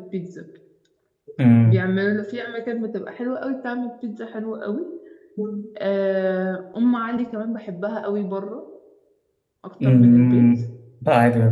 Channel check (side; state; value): both; identical; correlation 1.00